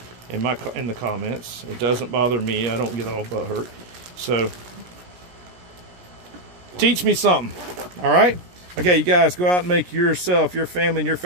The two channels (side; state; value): left; late; 17 ms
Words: in the comments. It doesn't bother me. I don't get all butthurt. So teach me something. All right? Okay, you guys, go out and make yourself, your family, and your